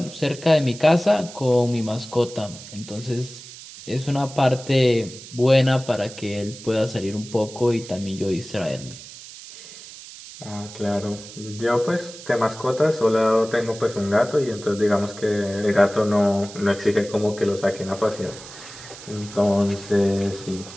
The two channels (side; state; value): right; noise; hiss, 16 dB below the sound